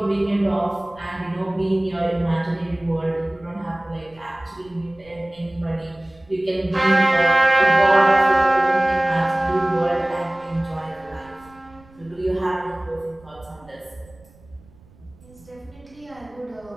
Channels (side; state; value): right; noise; rumble, 26 dB below the sound